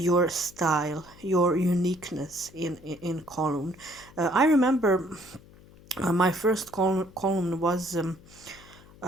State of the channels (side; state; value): left; noise; hum, 23 dB below the sound